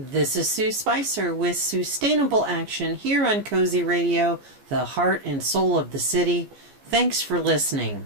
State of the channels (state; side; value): late; left; 14 ms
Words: is Sue Spicer with SueStainable Action here on Cozy Radio, the heart and soul of the city. Thanks for listening.